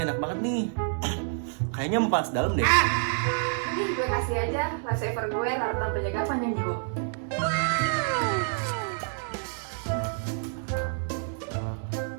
enak banget nih. Kayaknya mau panas dalam deh. Nih, gue kasih aja lifesaver gue, larutan penjaga panjang jiwa.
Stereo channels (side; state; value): left; silent; 59 dB below the other